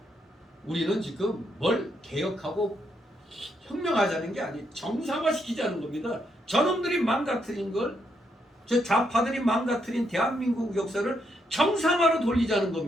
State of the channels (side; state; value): both; normal; correlation 0.78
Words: 우리는 지금 뭘 개혁하고 혁명하자는 게 아니에요. 정상화시키자는 겁니다. 저놈들이 망가뜨린 걸, 저 좌파들이 망가뜨린 대한민국 역사를 정상화로 돌리자는